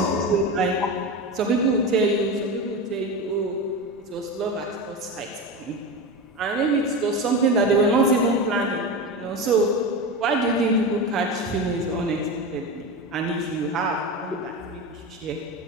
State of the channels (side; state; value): both; normal; correlation 0.22